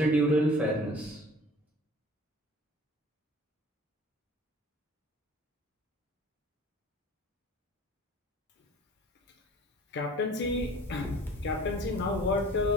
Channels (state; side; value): normal; both; correlation 0.46